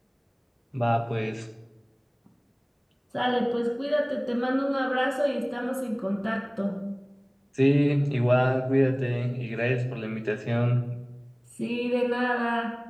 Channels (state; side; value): identical; both; correlation 1.00